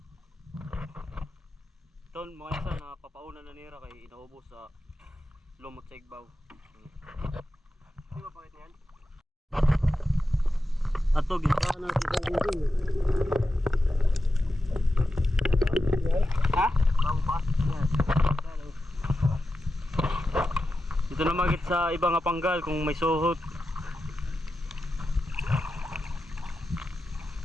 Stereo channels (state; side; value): normal; both; correlation 0.91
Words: Ton mga isa na papauna na nira kay inaubos sa lumot sa igbaw. Di ba pakit niyan? Ato gintaan na kita dito. Ha? Bago pa? Yes. Dito na magit sa ibang panggal kung may suhot.